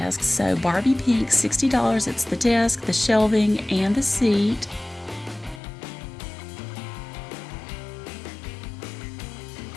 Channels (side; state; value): right; drops out; at 5.6 s